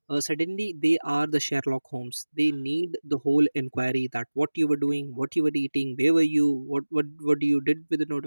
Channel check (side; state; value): both; inverted; correlation -1.00